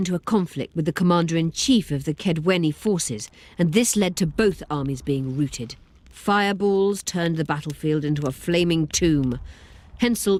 a conflict with the commander-in-chief of the Kedweni forces, and this led to both armies being routed. Fireballs turned the battlefield into a flaming tomb.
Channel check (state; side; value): identical; both; correlation 1.00